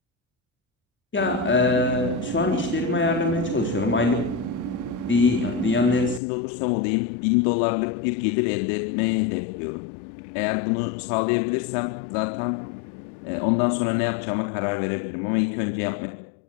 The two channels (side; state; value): right; drops out; at 6.2 s